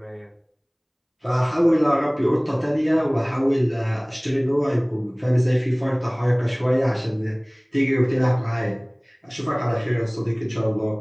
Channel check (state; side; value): identical; both; correlation 1.00